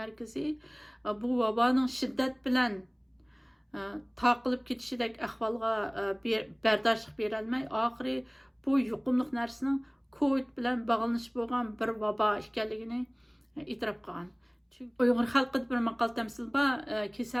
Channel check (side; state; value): both; identical; correlation 1.00